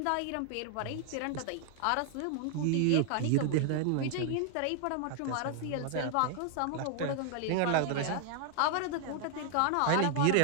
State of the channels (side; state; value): both; different; correlation 0.00